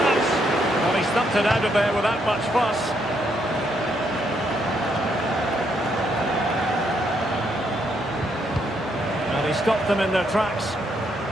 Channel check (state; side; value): normal; both; correlation 0.75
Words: Well, he stumped it out of there without much fuss. And he stopped them in their tracks.